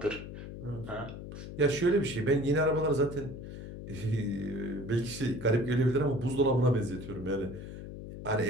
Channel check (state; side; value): noise; left; hum, 10 dB below the sound